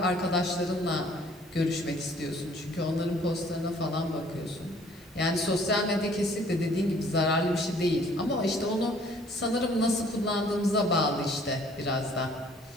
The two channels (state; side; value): normal; both; correlation 0.57